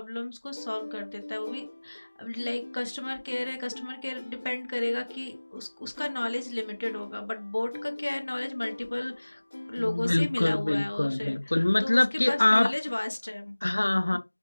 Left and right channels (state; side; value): inverted; both; correlation -1.00